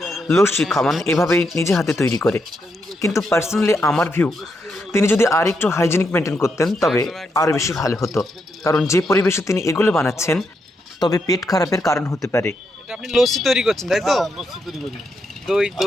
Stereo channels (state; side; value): normal; both; correlation 0.81